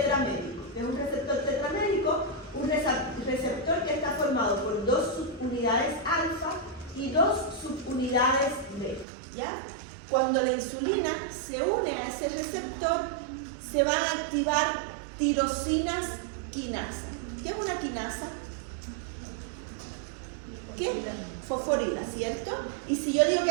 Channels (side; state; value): left; drops out; at 9.1 s